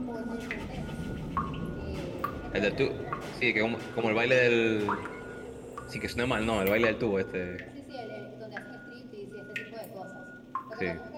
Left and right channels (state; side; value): identical; both; correlation 1.00